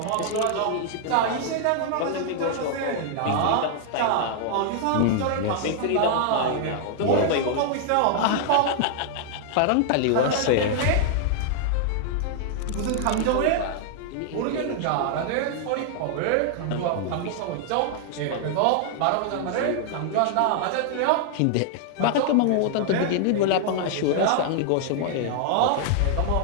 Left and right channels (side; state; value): both; different; correlation -0.01